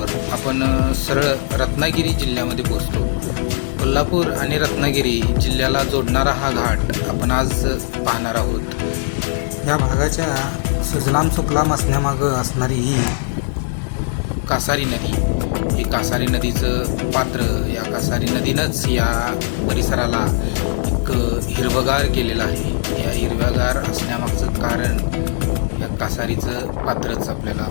आपण सरळ रत्नागिरी जिल्ह्यामध्ये पोहोचतो. कोल्हापूर आणि रत्नागिरी जिल्ह्याला जोडणारा हा घाट आपण आज पाहणार आहोत. या भागाच्या सुजलाम सुफलाम असण्यामागं असणारी ही कासारी नदी, ही कासारी नदीचं पात्र, या कासारी नदीनंच या परिसराला एक हिरवगार केलेलं आहे. या हिरव्यागार असण्यामागचं कारण या कासारीचं पात्रच आपल्याला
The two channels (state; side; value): silent; right; digital silence